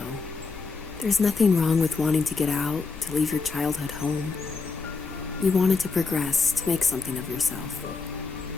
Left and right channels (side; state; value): right; quieter; 4.4 dB